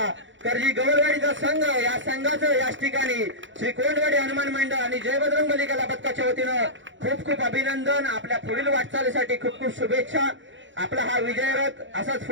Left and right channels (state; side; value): late; left; 0.55 ms